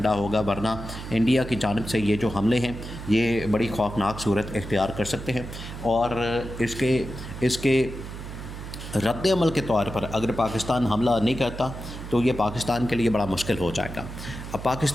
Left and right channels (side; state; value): right; noise; hum, 10 dB below the sound